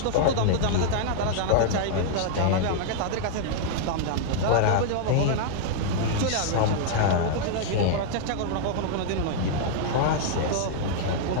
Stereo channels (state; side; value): different; both; correlation -0.01